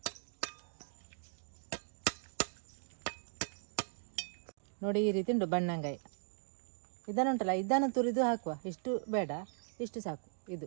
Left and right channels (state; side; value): silent; left; digital silence